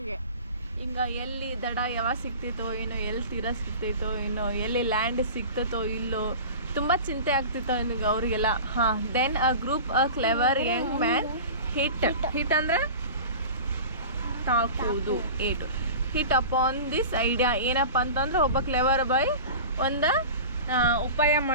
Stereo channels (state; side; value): inverted; both; correlation -0.36